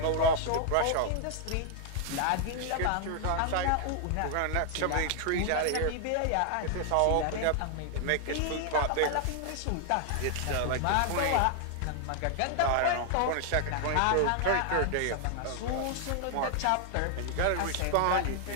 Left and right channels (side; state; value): both; different; correlation 0.00